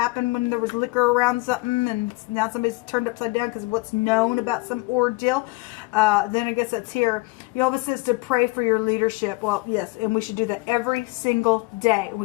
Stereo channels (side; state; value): right; quieter; 24.6 dB